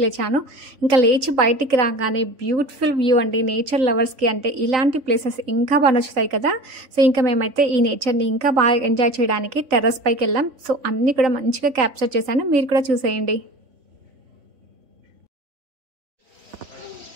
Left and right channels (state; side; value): late; left; 3.9 ms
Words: లేచాను. ఇంకా లేచి బయటికి రాగానే బ్యూటిఫుల్ వ్యూ అండి. నేచర్ లవర్స్కి అంటే ఇలాంటి ప్లేసెస్ ఇంకా బాగా నచ్చుతాయి కదా. సో ఇంకా మేమైతే ఈ నేచర్ని ఇంకా బాగా ఎంజాయ్ చేయడానికి టెర్రస్ పైకి వెళ్ళాం. సో అన్నీ కూడా మంచిగా క్యాప్చర్ చేశాను, మీరు కూడా చూసేయండి.